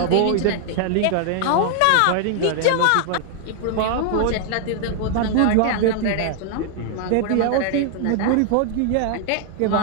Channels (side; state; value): both; different; correlation 0.00